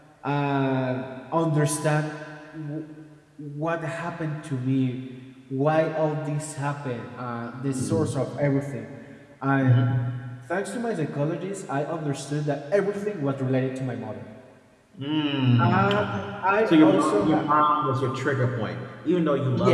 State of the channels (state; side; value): identical; both; correlation 1.00